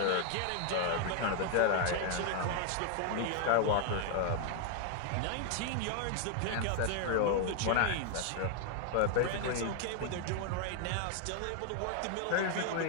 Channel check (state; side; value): different; both; correlation 0.00